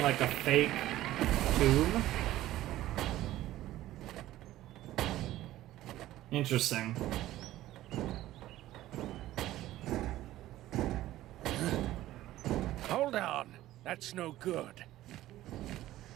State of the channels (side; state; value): left; quieter; 14.9 dB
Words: like a fake tomb? Interesting. Hold on. That's no good.